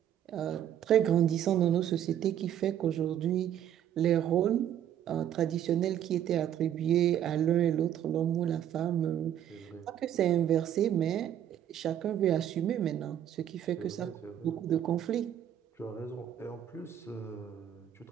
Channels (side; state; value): left; quieter; 10.4 dB